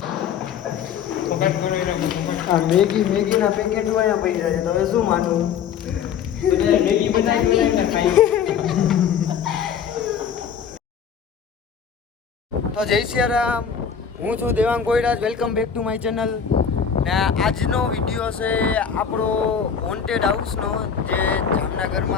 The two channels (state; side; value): quieter; right; 7.5 dB